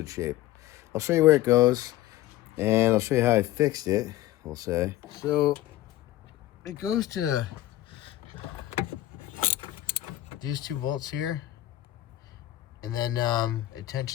shape. I'll show you where it goes. And I'll show you how I fixed it, we'll say. So, it goes to these two bolts here. And then it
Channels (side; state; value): right; quieter; 14.8 dB